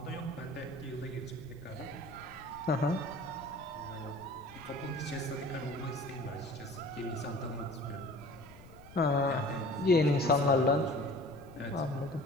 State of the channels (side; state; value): left; noise; rumble, 19 dB below the sound